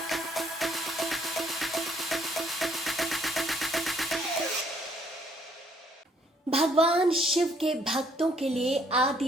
शिव के भक्तों के लिए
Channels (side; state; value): both; normal; correlation 0.66